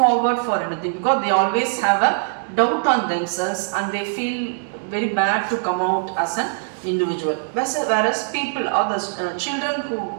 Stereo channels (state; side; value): silent; left; digital silence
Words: for anything because they always have a doubt on themselves and they feel very bad to come out as an individual. Whereas people or the children who